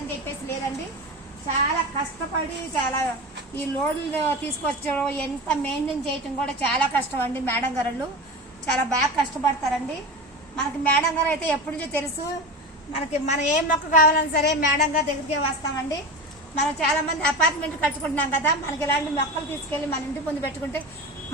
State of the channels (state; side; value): normal; both; correlation 0.27